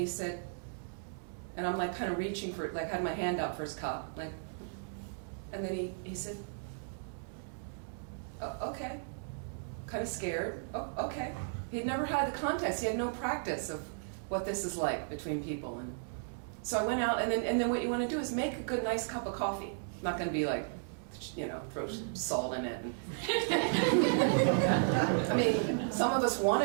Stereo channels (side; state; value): left; silent; digital silence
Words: said, and I'm like kind of reaching for it, like had my hand out for his cup, like, and then he said, oh, okay, kind of scared, oh, okay. He'd never had the context, he had no practice of what this is like between people. And so I went out, and then what you want to do is make a good, nice cup of coffee. I'm not going to be like, throw salt in it. I mean, some of us want